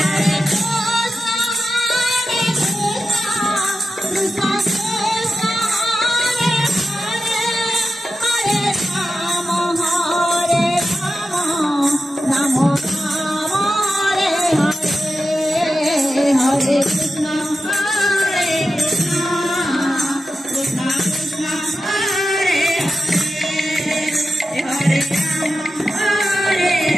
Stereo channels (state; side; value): normal; both; correlation 0.91